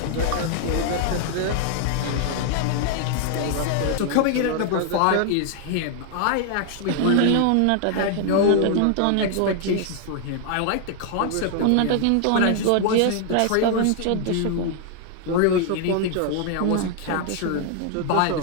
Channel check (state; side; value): different; both; correlation 0.00